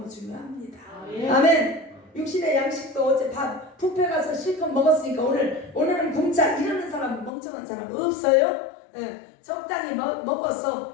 중요합니다. 아멘. 육신의 양식도 어제 밥 뷔페 가서 실컷 먹었으니까 오늘은 굶자 이러는 사람, 멍청한 사람 없어요. 적당히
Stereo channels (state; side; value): drops out; right; at 7.3 s